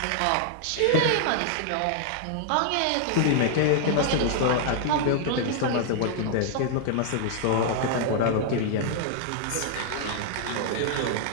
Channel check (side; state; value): both; different; correlation -0.01